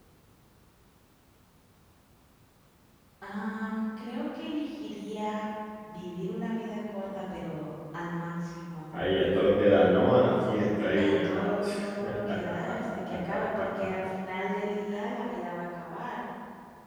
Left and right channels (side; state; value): both; identical; correlation 1.00